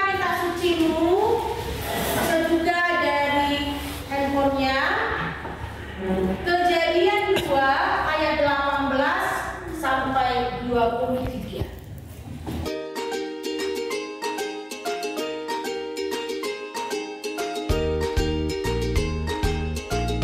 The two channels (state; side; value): identical; both; correlation 1.00